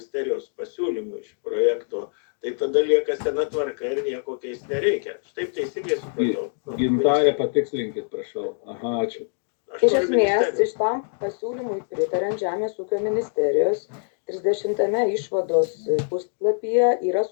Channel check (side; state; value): right; silent; 62 dB below the other